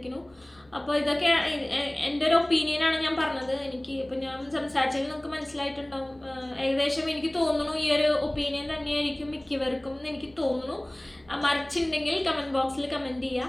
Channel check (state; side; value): noise; left; hum, 29 dB below the sound